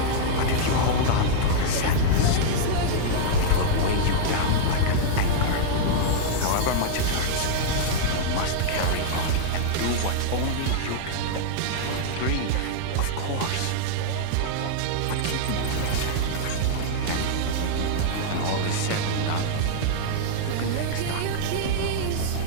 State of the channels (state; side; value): different; both; correlation -0.01